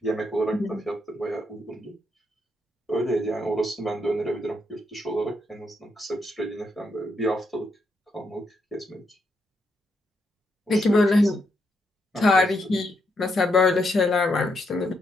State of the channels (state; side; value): normal; both; correlation 0.78